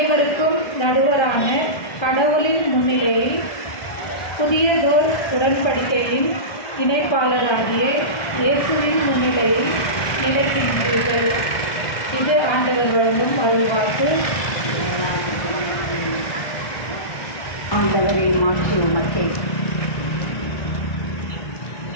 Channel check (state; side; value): late; right; 1.2 ms